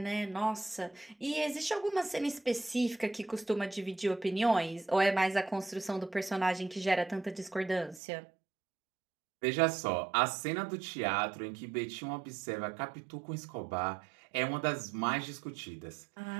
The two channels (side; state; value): left; drops out; at 8.0 s